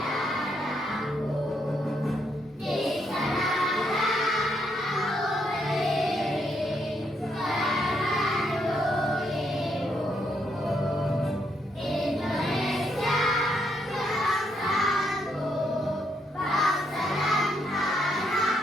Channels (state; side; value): normal; both; correlation 0.76